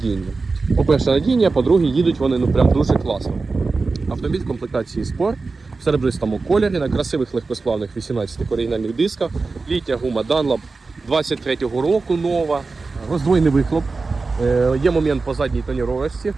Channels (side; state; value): left; quieter; 4.0 dB